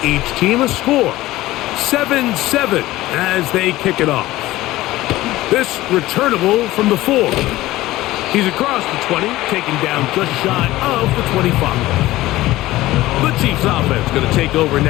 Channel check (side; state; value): right; quieter; 17.0 dB